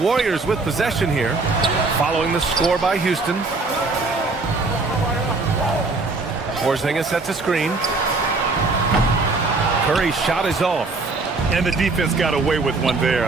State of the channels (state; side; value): quieter; left; 3.7 dB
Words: with possession here, following the score by Houston. Porzingis sets a screen. Curry's shot is off. And the defense got away with one there.